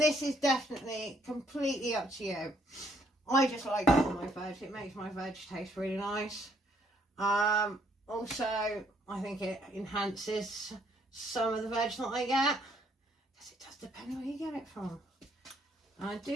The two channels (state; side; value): normal; both; correlation 0.68